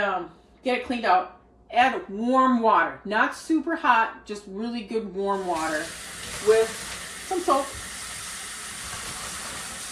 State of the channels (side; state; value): both; identical; correlation 1.00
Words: get it cleaned out. Add warm water, not super hot, just really good warm water with some soap.